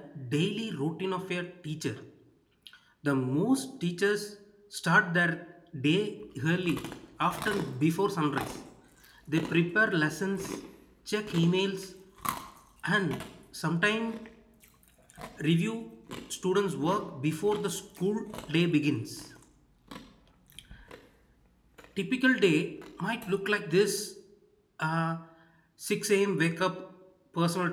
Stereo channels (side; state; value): both; identical; correlation 1.00